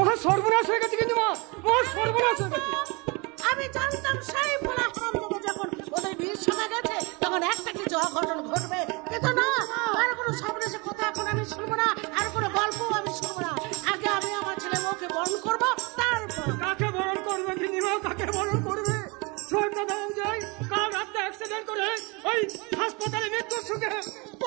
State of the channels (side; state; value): left; quieter; 28.3 dB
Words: সর্বনাশ হয়ে গেছে, কিন্তু মহা সর্বনাশ হয়ে গেছে। আমি জানতাম সেই ভোলা হারামজাদা যখন ওদের বিয়ের সময় গেছে তখন একটা কিছু অঘটন ঘটবে, কিন্তু না, আর কোনো সর্বনাশের কথা এখন আমি শুনবো না, আর কোনো গল্প আমি শুনবো না। আগে আমি আমার ছেলে বউকে বরণ করবো, তারপর কাকে বরণ করবে গিন্নিমা, কাকে বরণ করবে? শোনটা দাও যায়, কাল রাতে অ্যাক্সিডেন্ট করে ওই হাসপাতালে মৃত্যুর সুখে